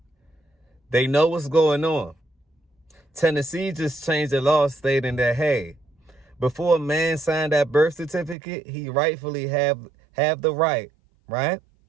They know what's going on. Tennessee just changed the law stating that, hey, before a man signed that birth certificate, he rightfully have the right,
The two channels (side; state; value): left; drops out; at 8.3 s